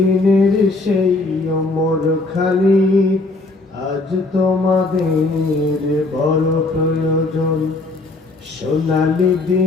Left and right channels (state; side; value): quieter; right; 3.2 dB